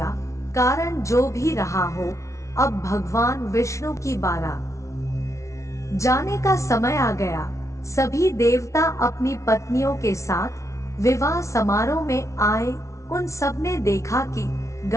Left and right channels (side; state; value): right; late; 0.14 ms